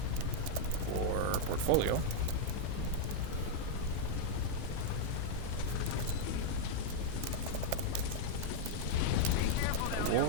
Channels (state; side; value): different; both; correlation -0.01